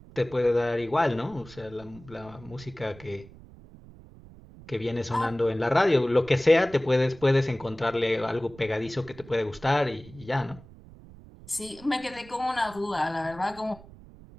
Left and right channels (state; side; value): noise; right; rumble, 20 dB below the sound